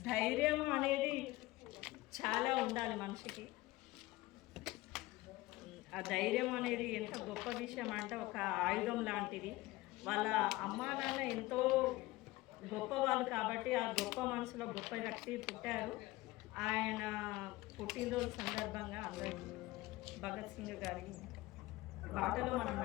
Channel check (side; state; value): right; quieter; 19.1 dB